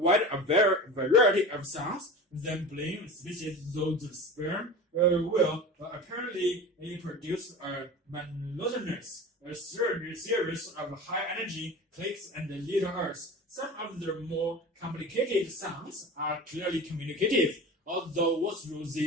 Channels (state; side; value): normal; both; correlation 0.33